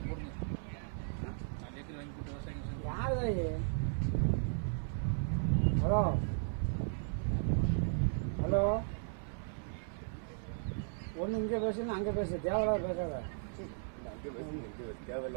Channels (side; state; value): left; silent; 54 dB below the other